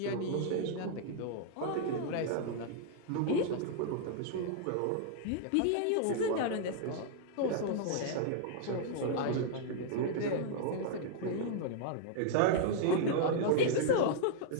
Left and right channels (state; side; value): different; both; correlation -0.01